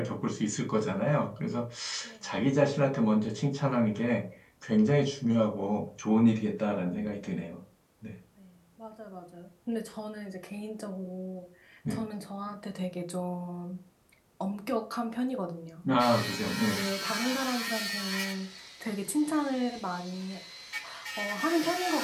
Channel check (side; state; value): both; identical; correlation 1.00